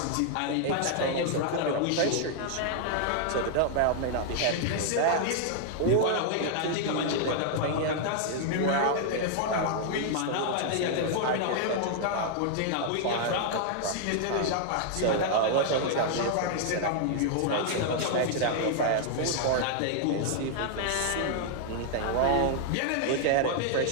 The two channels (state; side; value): different; both; correlation -0.01